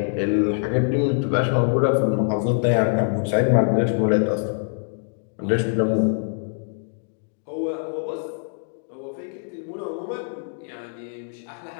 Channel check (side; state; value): right; silent; digital silence